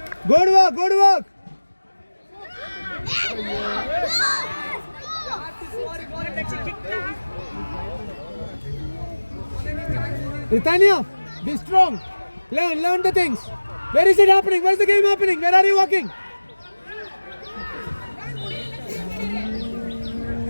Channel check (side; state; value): both; inverted; correlation -1.00